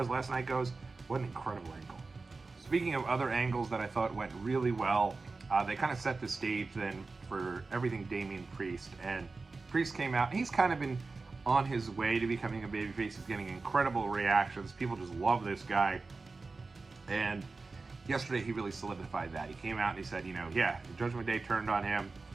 as last night goes, what an incredible angle. Speaking of other angles that I thought went really well, they kind of set the stage then for everything Damian Priest. And Priest came out, and he's kind of been on his way to becoming a babyface. He's getting incredible reactions. People just love this guy. And yesterday he really solidified that. He came out and he said, the Judgment Day turned on him.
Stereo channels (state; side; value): quieter; left; 3.9 dB